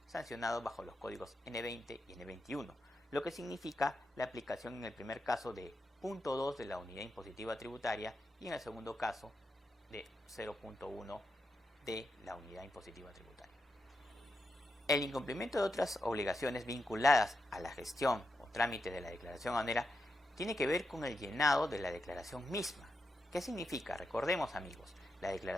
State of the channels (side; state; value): both; normal; correlation 0.86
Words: sancionado bajo los códigos N20 y N21, lo que significa la aplicación en el primer caso de 0.2 de la unidad impositiva tributaria y en el segundo caso de 0.1 de la unidad impositiva tributaria. El incumplimiento de otras obligaciones vinculadas a la gestión o trámite de la declaración aduanera tiene que ver con el llenado de la declaración misma. ¿Qué significa? Recordemos, amigos, la